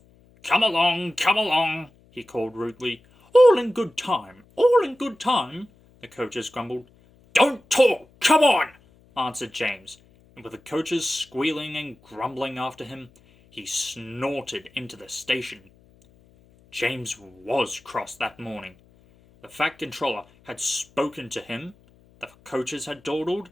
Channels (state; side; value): noise; left; hum, 29 dB below the sound